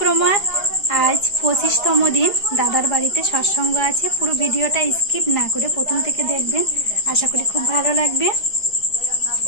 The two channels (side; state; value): right; late; 4.9 ms